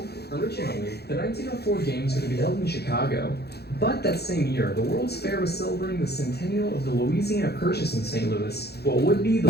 The 1904 Games were to be held in Chicago, but that same year, the World's Fair was celebrating the centennial of the Louisiana Purchase in St. Louis. What would be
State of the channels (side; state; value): right; late; 0.47 ms